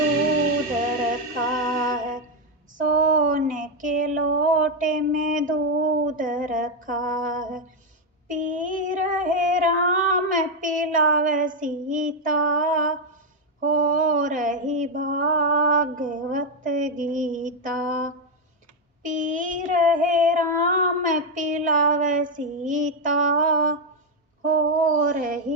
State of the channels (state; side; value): normal; both; correlation 0.04